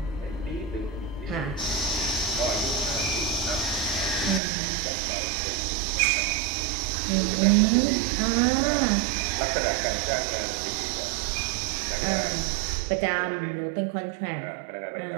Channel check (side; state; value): left; drops out; at 4.4 s